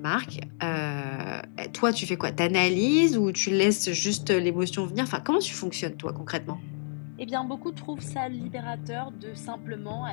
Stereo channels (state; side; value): silent; right; digital silence